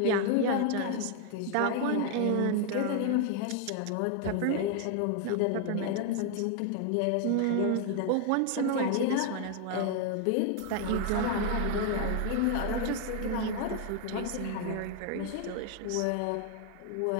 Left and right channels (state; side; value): different; both; correlation 0.00